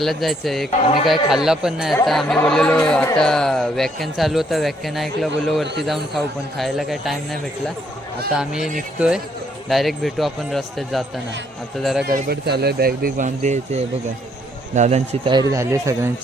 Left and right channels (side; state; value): both; normal; correlation 0.69